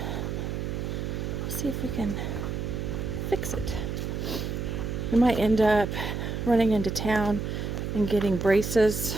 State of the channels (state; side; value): noise; right; hum, 3 dB below the sound